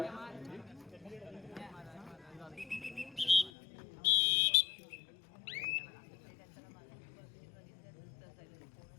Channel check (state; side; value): drops out; right; at 3.5 s